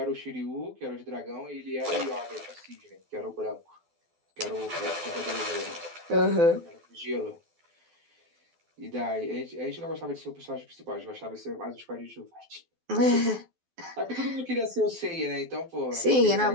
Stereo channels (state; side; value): late; left; 12 ms